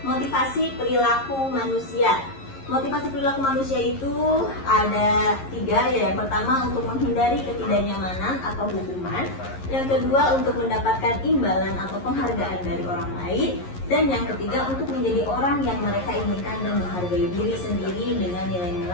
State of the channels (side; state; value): right; late; 11 ms